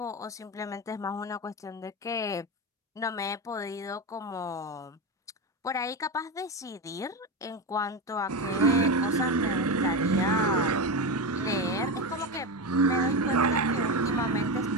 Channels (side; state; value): both; normal; correlation 0.17